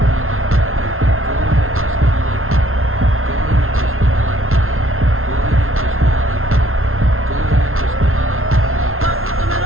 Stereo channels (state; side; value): late; left; 0.62 ms